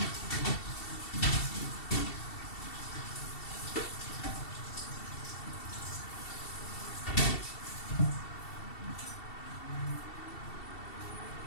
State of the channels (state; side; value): late; right; 2.7 ms